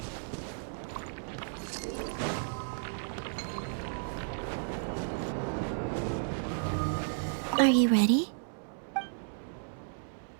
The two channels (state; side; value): silent; left; 56 dB below the other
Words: Are you ready?